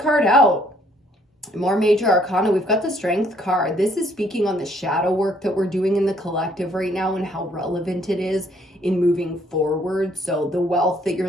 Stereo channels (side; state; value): both; normal; correlation 0.65